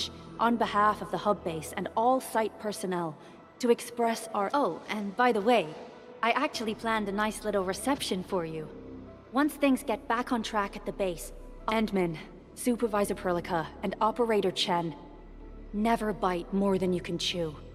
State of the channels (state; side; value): identical; both; correlation 1.00